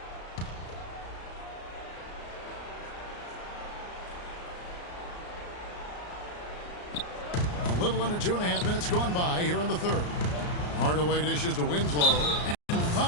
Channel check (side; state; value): right; late; 34 ms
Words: A little under 2.5 minutes gone by here in the third. Hardaway dishes to Winslow. And